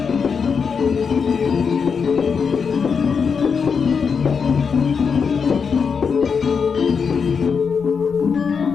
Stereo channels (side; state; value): right; quieter; 6.0 dB